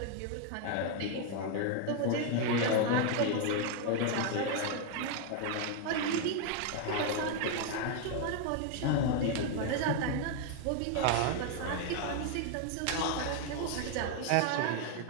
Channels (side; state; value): both; different; correlation 0.01